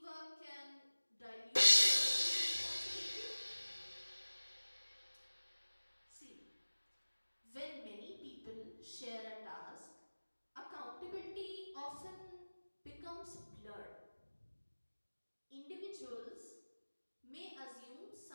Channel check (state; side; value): inverted; both; correlation -1.00